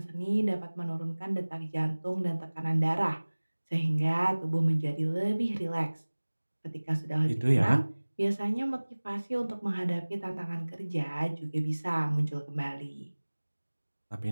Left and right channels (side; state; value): both; inverted; correlation -1.00